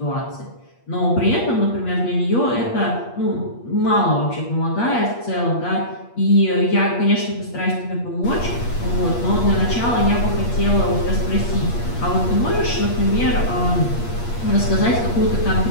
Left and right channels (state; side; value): late; right; 8.5 ms